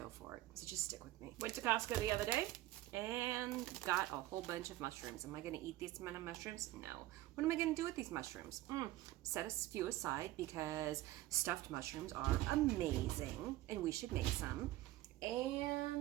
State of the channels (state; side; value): quieter; left; 16.3 dB